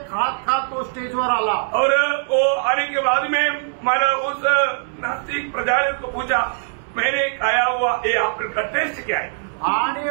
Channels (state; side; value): silent; left; digital silence